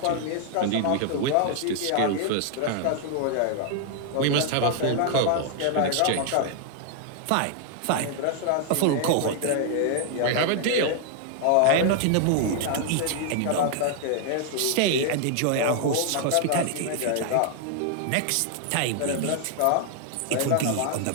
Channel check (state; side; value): different; both; correlation 0.00